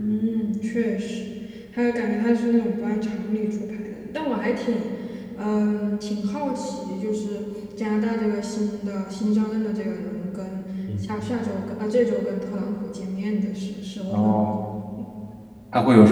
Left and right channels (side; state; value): both; identical; correlation 1.00